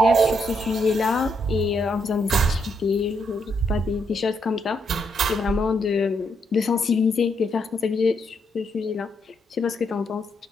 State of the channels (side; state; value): both; normal; correlation 0.77